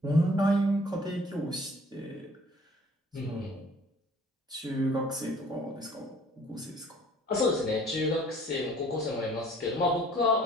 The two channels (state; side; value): normal; both; correlation 0.53